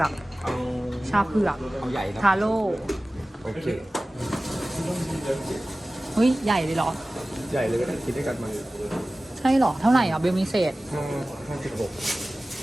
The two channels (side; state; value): both; normal; correlation 0.97